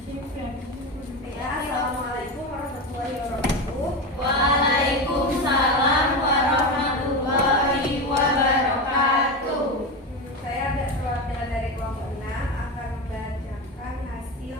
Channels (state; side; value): normal; both; correlation 0.19